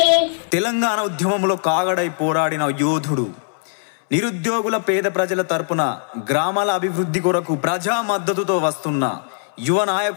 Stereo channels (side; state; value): right; silent; 66 dB below the other